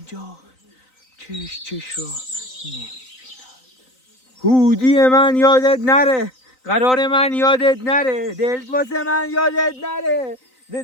چش را نمیبیند. هودی من یادت نره، قرار من یادت نره، دلت واسه من یادت نره،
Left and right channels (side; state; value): right; late; 3.9 ms